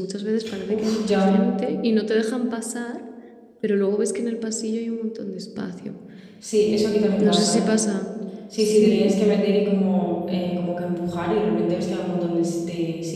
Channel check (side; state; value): both; identical; correlation 1.00